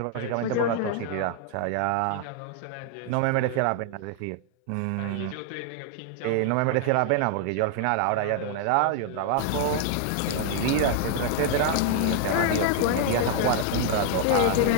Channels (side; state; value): both; different; correlation 0.00